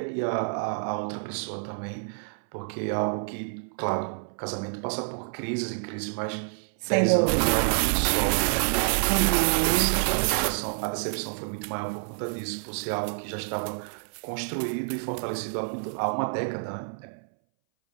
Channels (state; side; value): silent; left; 60 dB below the other